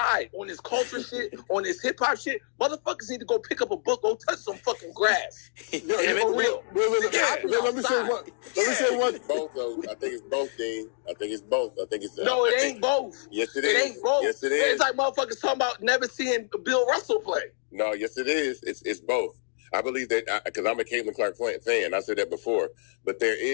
on this culture shit, on this hip hop shit. Motherfuckers need to go pick up a book, go touch some fucking grass. Let me say one. Both though. I think it's both, Dean. I think it's both. No, it ain't both. Yes, it is. It ain't both. Yes, it is. It's like motherfuckers talking about never seeing Bill Russell play. No, yes, it is. It's both. I believe that because I'm a Caitlin Clark fan. I said that before, but there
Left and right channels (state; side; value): silent; right; digital silence